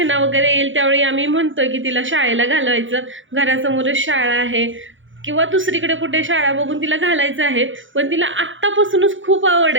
वगैरे येईल, त्यावेळी आम्ही म्हणतोय की तिला शाळेला घालवायचं. घरासमोरच शाळा आहे, किंवा दुसरीकडे कुठे शाळा बघून तिला घालायचं आहे. पण तिला आत्तापासूनच खूप आवड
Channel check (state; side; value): late; left; 0.56 ms